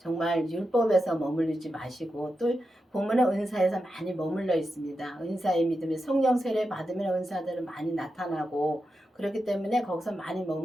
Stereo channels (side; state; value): both; normal; correlation 0.89